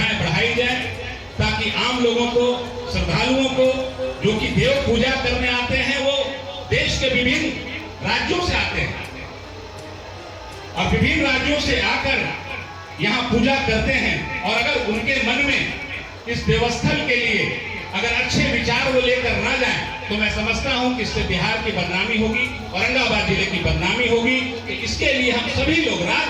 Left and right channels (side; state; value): both; identical; correlation 1.00